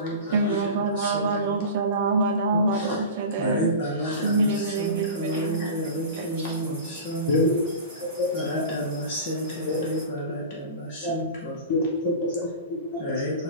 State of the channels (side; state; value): both; inverted; correlation -0.31